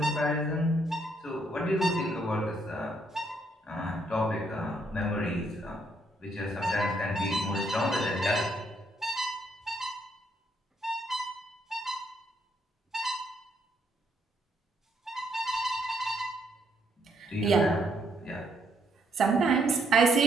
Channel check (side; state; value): both; normal; correlation 0.72